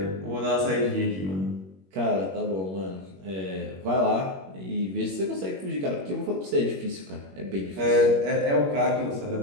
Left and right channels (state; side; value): late; left; 21 ms